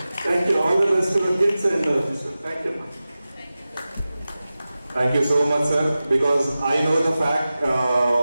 Thank you. All the best kids and thank you. Thank you so much, sir, because I know the fact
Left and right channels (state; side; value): inverted; both; correlation -0.95